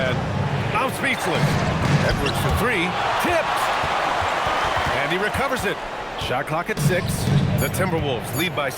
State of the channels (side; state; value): both; identical; correlation 1.00